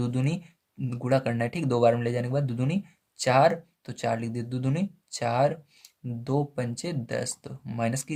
दूनी गुणा करना है, ठीक। 2 बार में ले जाने के बाद दो दूनी 4, तो 4 लिख दिए, दो दूनी 4, 2 पंचे 10, तो माइनस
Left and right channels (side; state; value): both; identical; correlation 1.00